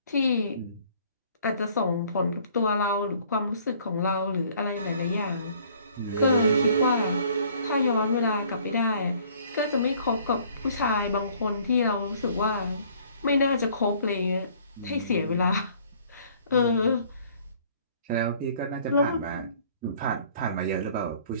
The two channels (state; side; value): inverted; both; correlation -0.57